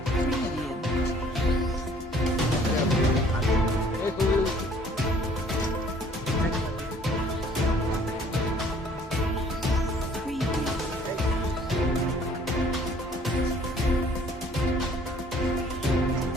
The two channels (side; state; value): both; normal; correlation 0.57